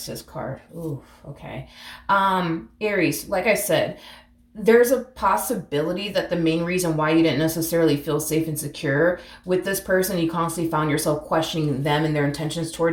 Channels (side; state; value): both; identical; correlation 1.00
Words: card. Ooh, okay. Aries, like I said, there's a possibility that the main reason why you didn't necessarily feel safe and secure with this person, you constantly found yourself questioning them and their intentions